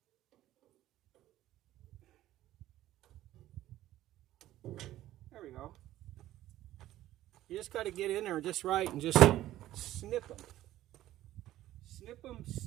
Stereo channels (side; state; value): left; quieter; 14.2 dB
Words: There we go. You just got to get in there just right and just snip them. Snip them,